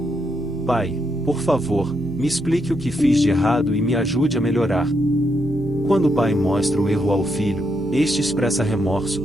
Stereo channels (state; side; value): noise; right; hum, 16 dB below the sound